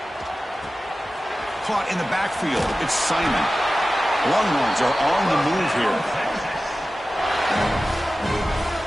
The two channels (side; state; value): both; normal; correlation 0.95